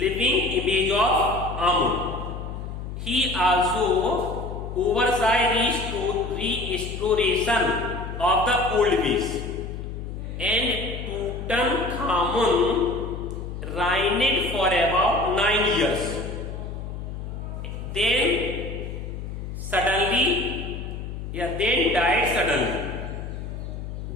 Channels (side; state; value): left; noise; hum, 7 dB below the sound